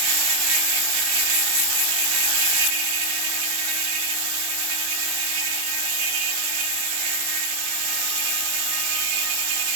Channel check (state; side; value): late; left; 22 ms